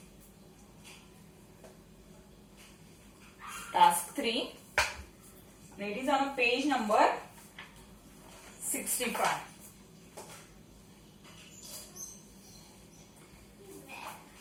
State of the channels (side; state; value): both; identical; correlation 1.00